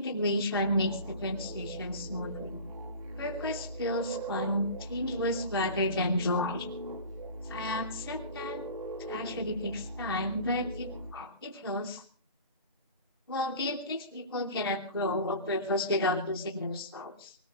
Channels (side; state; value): both; inverted; correlation -0.37